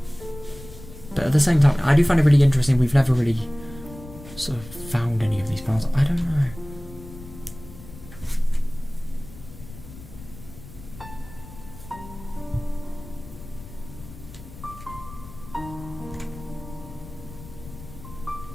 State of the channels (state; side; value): noise; left; rumble, 16 dB below the sound